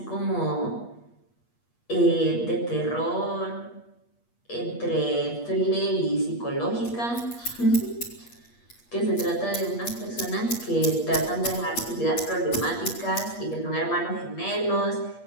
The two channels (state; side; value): late; right; 8.4 ms